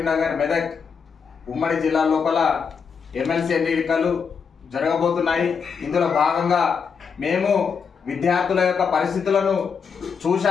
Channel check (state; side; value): quieter; right; 6.1 dB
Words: మెదక్ ఉమ్మడి జిల్లాల లోపల ఎమ్మెల్సీ ఎన్నికలు జరగబోతున్నాయి. ఇందులో భాగంగా మేము విద్యార్థుల యొక్క పరిస్థితులను